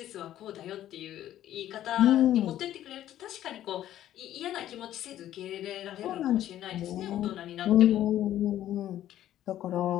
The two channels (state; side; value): quieter; right; 12.4 dB